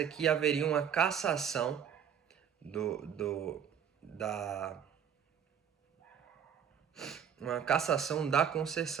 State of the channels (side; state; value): left; quieter; 8.2 dB